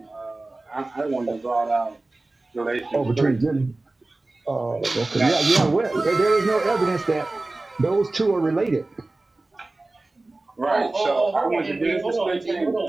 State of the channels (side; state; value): left; quieter; 3.0 dB